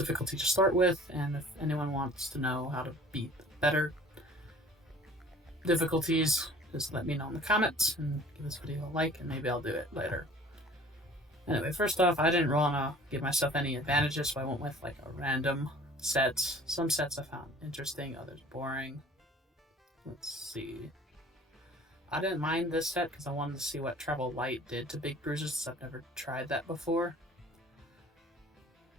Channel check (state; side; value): normal; both; correlation 0.49